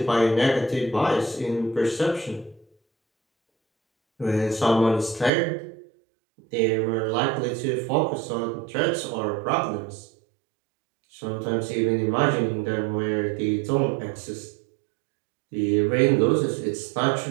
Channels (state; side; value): drops out; left; at 5.3 s